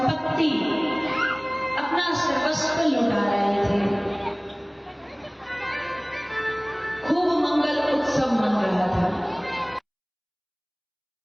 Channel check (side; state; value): both; identical; correlation 1.00